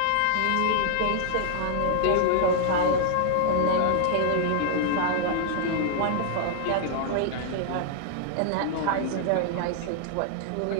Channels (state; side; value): different; both; correlation -0.01